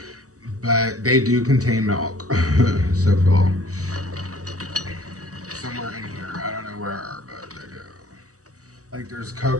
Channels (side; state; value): left; late; 0.66 ms